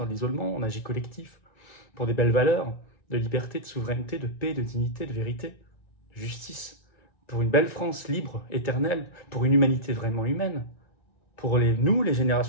de l'isolement, on agit collectif pour des belles valeurs. De liberté, de souveraineté, de paix, de dignité, de vérité, de justice, pour une belle France libre, éternelle, pour une humanité vraiment humaine. Pour nous, les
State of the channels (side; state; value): right; late; 1.9 ms